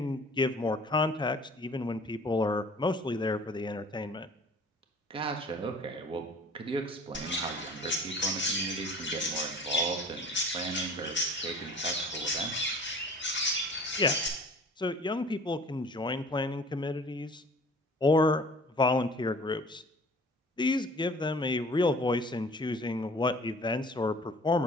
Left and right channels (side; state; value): both; normal; correlation 0.47